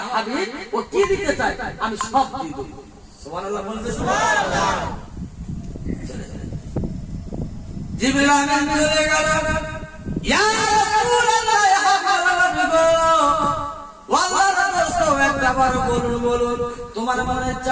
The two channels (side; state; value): both; identical; correlation 1.00